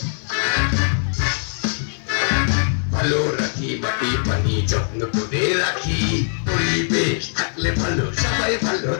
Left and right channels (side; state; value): right; silent; digital silence